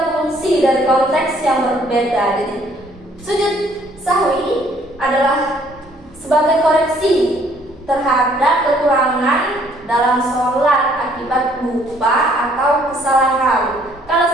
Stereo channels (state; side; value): normal; both; correlation 0.62